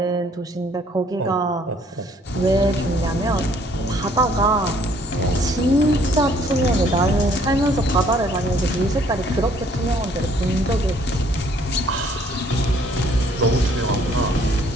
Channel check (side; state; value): both; normal; correlation 0.62